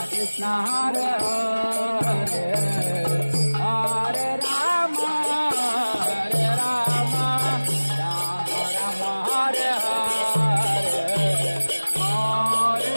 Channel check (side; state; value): both; inverted; correlation -1.00